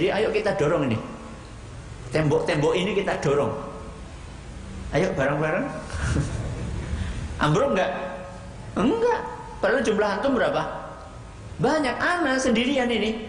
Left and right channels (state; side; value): identical; both; correlation 1.00